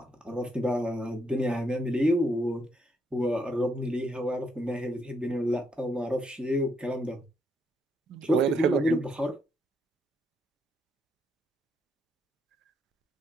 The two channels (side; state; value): both; normal; correlation 0.75